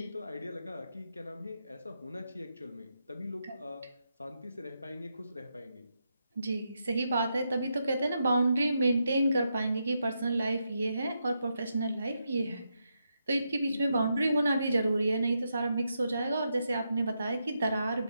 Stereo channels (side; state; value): both; inverted; correlation -0.83